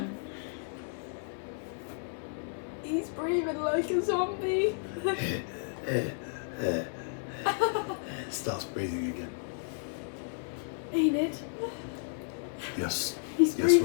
He's breathing like a zombie. Starts breathing again. Enid. Yes. He's Yes,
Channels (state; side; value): silent; right; 56 dB below the other